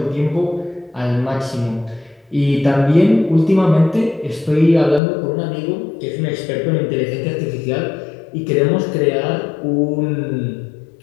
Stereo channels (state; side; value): drops out; right; at 5.0 s